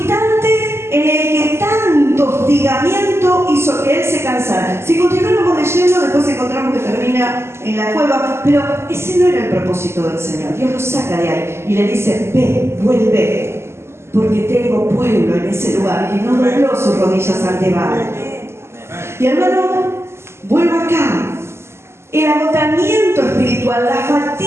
en el que tanto hostigamiento hizo que él se cansara. Si continuamos leyendo, después encontramos que termina en la cueva, pero ese no era el propósito del Señor. Dios lo saca de ahí y le dice, ve, vuelve, porque tengo pueblo en ese lugar. Y no dobló sus rodillas ante Baal. Y hermano, vuelvo acá. El agotamiento espiritual, la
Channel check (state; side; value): late; left; 0.12 ms